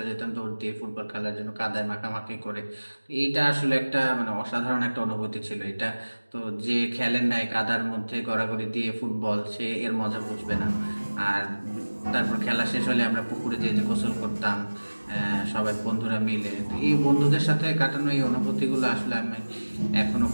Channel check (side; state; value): both; inverted; correlation -1.00